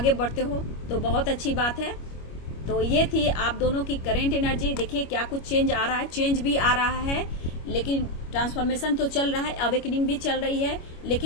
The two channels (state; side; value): late; right; 25 ms